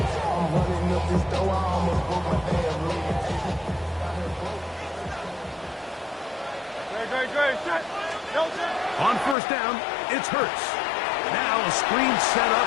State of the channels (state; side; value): drops out; right; at 9.3 s